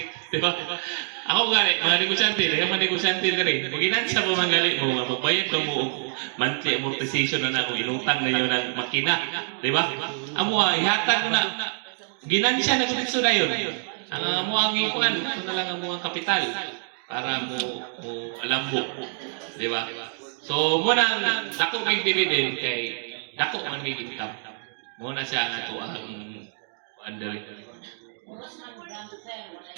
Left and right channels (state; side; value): silent; left; 61 dB below the other